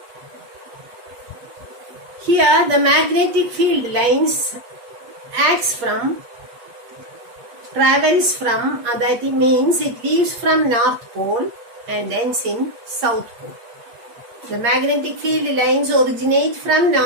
Here, the magnetic field lines travels from, that means it leaves from North Pole and ends in South Pole. The magnetic field lines originate from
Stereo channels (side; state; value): left; late; 8.5 ms